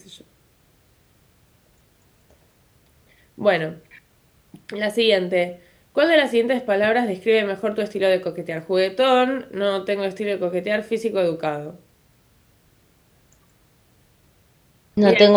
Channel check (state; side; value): identical; both; correlation 1.00